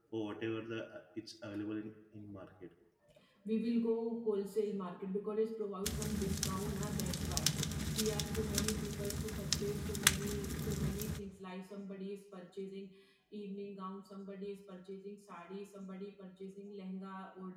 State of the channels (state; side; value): identical; both; correlation 1.00